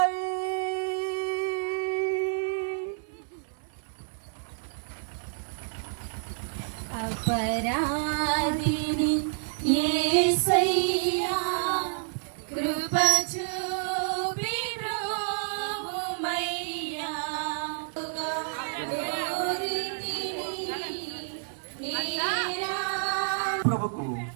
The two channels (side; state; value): left; silent; digital silence